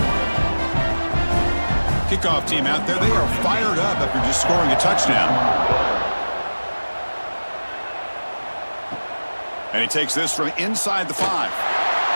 Kickoff team out there. They are fired up after just scoring a touchdown. And he takes this from inside the 5.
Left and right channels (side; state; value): both; inverted; correlation -1.00